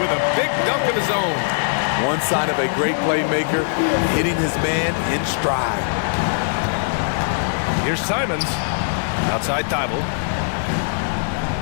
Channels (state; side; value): silent; right; 65 dB below the other